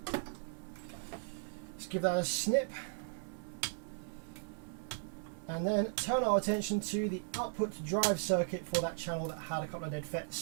Let's give that a snip, and then turn our attention to the output drive circuit for that channel that had a couple of dead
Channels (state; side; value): silent; left; 53 dB below the other